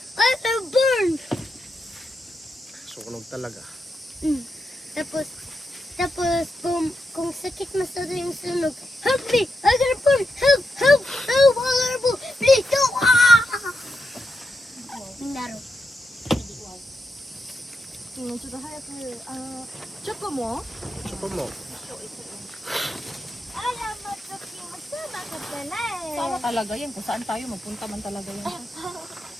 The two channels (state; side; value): normal; both; correlation 0.85